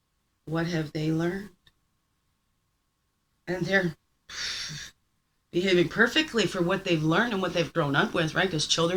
what have they learned? And they're behaving perfectly for what they've learned and what they've grown up with, right? Because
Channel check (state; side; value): identical; both; correlation 1.00